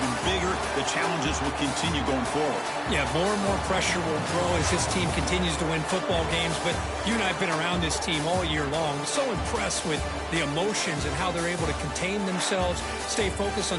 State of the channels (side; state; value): both; identical; correlation 1.00